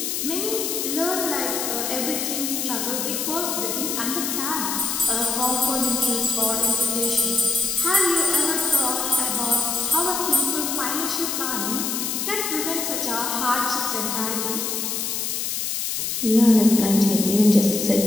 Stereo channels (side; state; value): left; noise; hiss, 2 dB below the sound